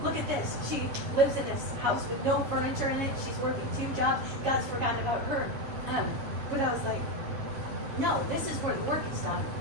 Look at this. She lives in this house with no furniture in it. She's working 2 jobs. God's forgotten about her. But I was like, no, this is where the work is done.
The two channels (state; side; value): late; left; 7.2 ms